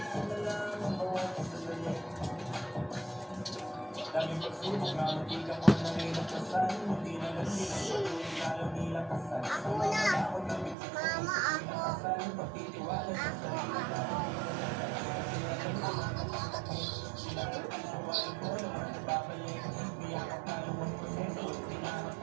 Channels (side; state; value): left; drops out; at 10.8 s